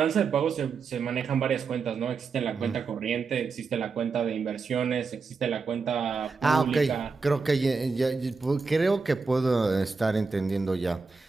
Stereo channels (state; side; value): quieter; left; 4.6 dB